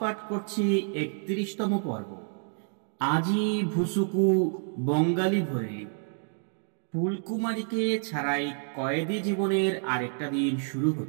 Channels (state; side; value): silent; left; 59 dB below the other